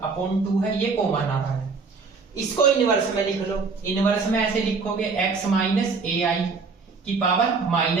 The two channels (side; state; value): left; quieter; 4.6 dB